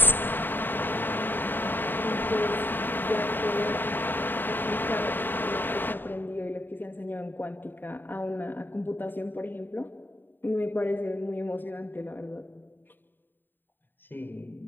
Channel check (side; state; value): right; late; 0.093 ms